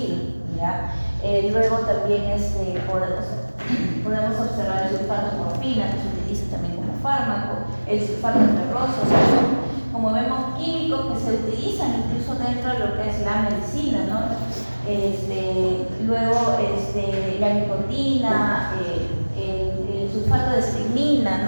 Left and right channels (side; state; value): both; inverted; correlation -1.00